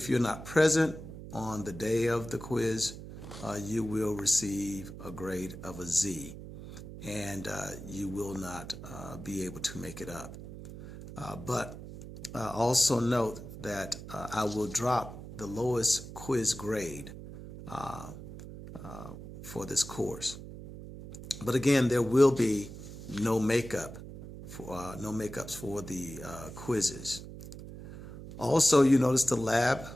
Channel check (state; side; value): noise; right; hum, 12 dB below the sound